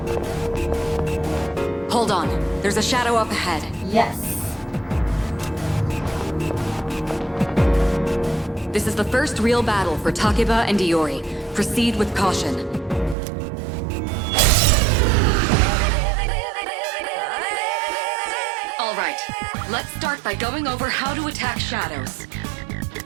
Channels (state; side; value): drops out; left; at 13.2 s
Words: Hold on. There's a shadow up ahead. Yes. This is the first real battle for Takeba and Iori. Proceed with caution. Alright, let's start by going over how to attack shadows.